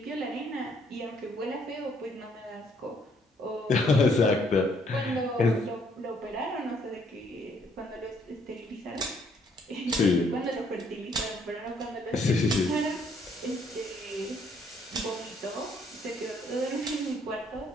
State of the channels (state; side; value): normal; both; correlation 0.67